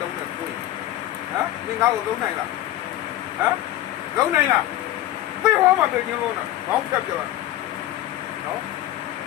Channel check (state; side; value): quieter; right; 14.1 dB